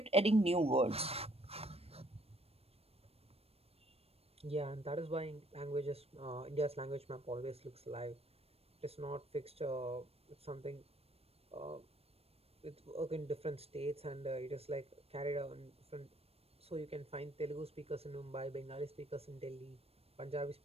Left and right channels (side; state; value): left; late; 0.29 ms